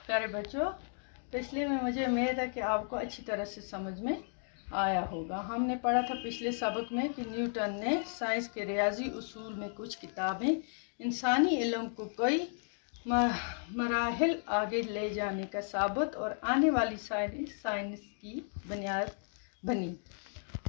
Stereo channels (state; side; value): silent; right; 55 dB below the other